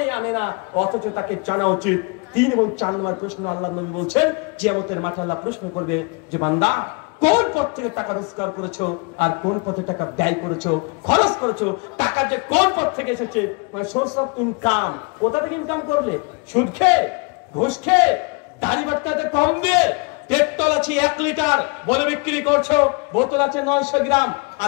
আনে না, অথচ তাকে জানা উচিত। 3 এবং 4 নম্বর প্রশ্ন আল্লাহ নবী বলছেন, কিয়ামতের মাঠে আল্লাহ প্রশ্ন করবে যে বান্দা কোন পথ থেকে টাকা রোজগার করেছো, আর কোন পথে টাকা ব্যয় করেছো, খরচ করেছো। টাকা যে কোন পথ থেকে এসেছে, মানে সোর্স অফ ইনকাম, কোথা থেকে ইনকাম করলে? সুদ খেয়ে, ঘুষ খেয়ে, দাড়ি বাটকাতে কম দিয়ে, পেট্রোল আছে 1 লিটার বলে বিক্রি করছো, বোতল আছে 900 গ্রাম,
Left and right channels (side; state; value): right; quieter; 31.8 dB